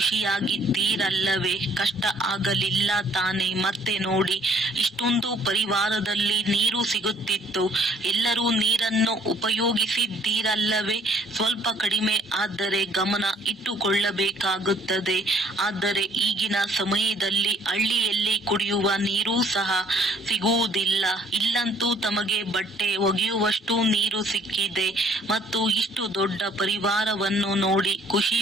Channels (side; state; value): both; normal; correlation 0.60